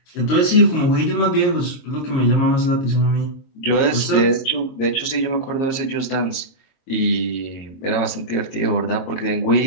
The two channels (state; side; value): late; right; 22 ms